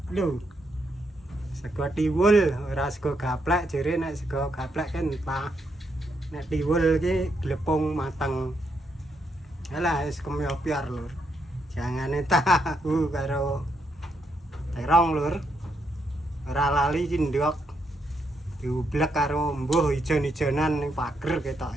Lho. Sego tiwul, ora sego gaplek jere nek sego gaplek kan entah. Nek tiwul iki glepung mateng. Alah wis kemyopiar lur. Jangane tahu karo terong lur. Ora lali iki ndok. Diublek karo mbuh ijon-ijonan ning pager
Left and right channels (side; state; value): both; normal; correlation 0.78